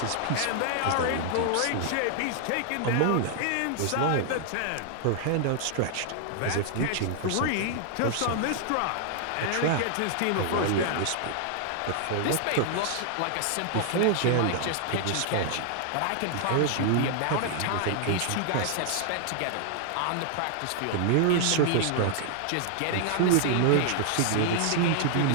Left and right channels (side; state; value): both; different; correlation 0.00